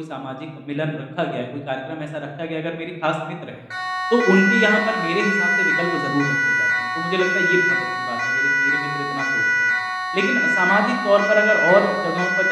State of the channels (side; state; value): both; identical; correlation 1.00